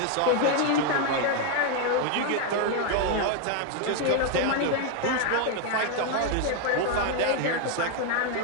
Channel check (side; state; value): both; different; correlation 0.01